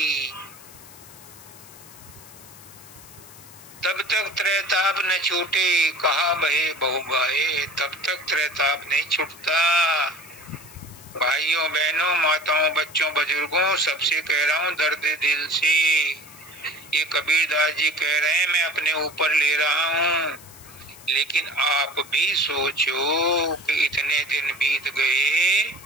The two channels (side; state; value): left; noise; hiss, 20 dB below the sound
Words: तब तक त्रैताप न छूटे कहा बहे बहु बाहे, तब तक त्रैताप नहीं छूटता। भाइयों बहनों माताओं बच्चों बुजुर्गों सबसे कह रहा हूँ दर्द दिल से, ये कबीरदास जी कह रहे हैं, मैं अपने ऊपर ले रहा हूँ, लेकिन आप भी सोचो कि इतने दिन बीत गए,